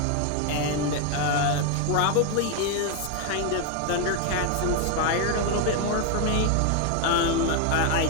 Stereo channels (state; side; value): different; both; correlation 0.01